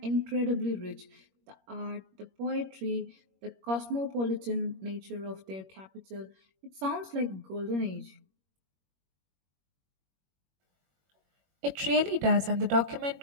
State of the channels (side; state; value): left; late; 21 ms